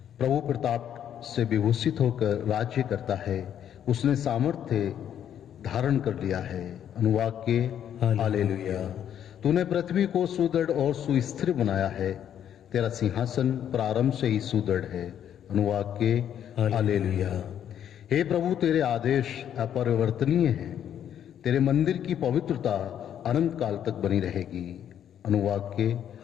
प्रभु प्रताप से विभूषित होकर राज्य करता है। उसने सामर्थ्य धारण कर लिया है। अनुवाक्य हालेलुया। तूने पृथ्वी को सुदृढ़ और सुस्थिर बनाया है। तेरा सिंहासन प्रारंभ से ही सुदृढ़ है। अनुवाक्य हालेलुया। हे प्रभु, तेरे आदेश अपरिवर्तनीय हैं। तेरे मंदिर की पवित्रता अनंत काल तक बनी रहेगी। अनुवाक्य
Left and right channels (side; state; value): right; quieter; 9.7 dB